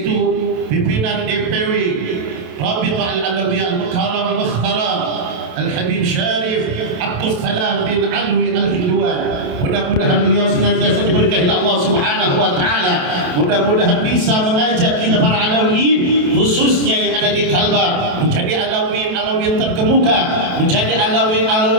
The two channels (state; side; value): late; left; 28 ms